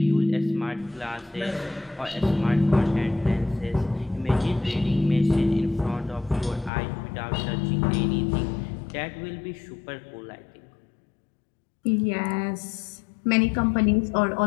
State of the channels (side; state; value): right; drops out; at 6.7 s